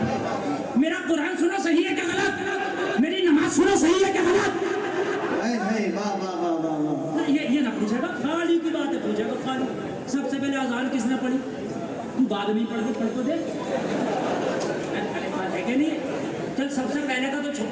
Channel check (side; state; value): both; identical; correlation 1.00